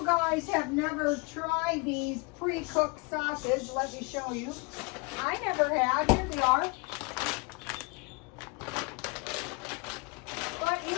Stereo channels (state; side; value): quieter; right; 29.7 dB